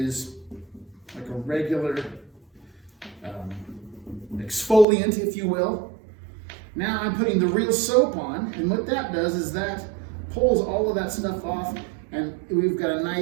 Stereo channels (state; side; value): drops out; left; at 4.9 s